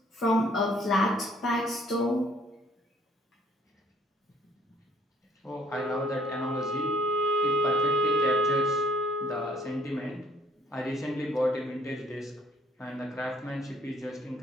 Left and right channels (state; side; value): normal; both; correlation 0.62